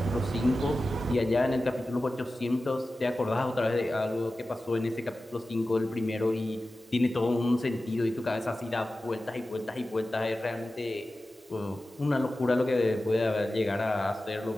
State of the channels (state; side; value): normal; both; correlation 0.95